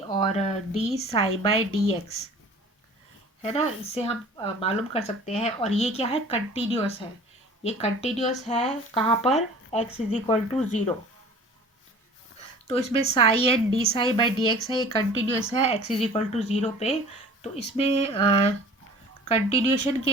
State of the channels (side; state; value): both; normal; correlation 0.45